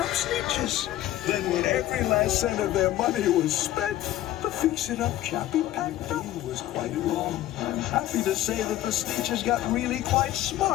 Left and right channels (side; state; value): right; quieter; 14.0 dB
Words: Sneetches. Then when every last cent of their money was spent, the fix-it-up chappie packed up. It was quite wrong. I'm happy to say that the Sneetches got really quite